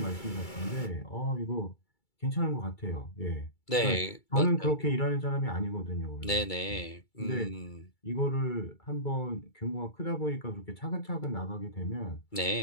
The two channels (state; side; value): late; right; 2.3 ms